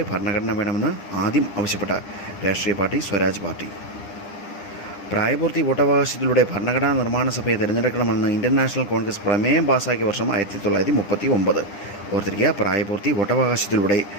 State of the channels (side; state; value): right; late; 9.9 ms